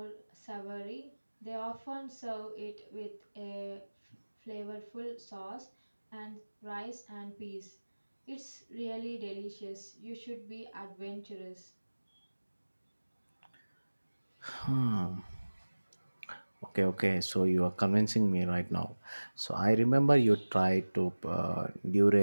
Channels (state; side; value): inverted; both; correlation -1.00